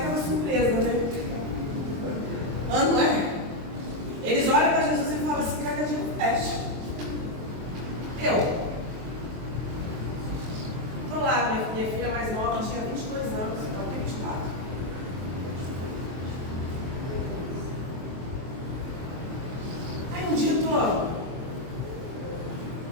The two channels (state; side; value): late; left; 23 ms